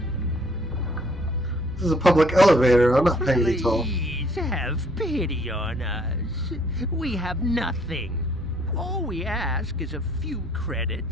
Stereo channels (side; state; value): both; normal; correlation 0.61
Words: This is a public elevator. I'm not paying any toll. Please have pity on us. We have nothing. All we ask is a few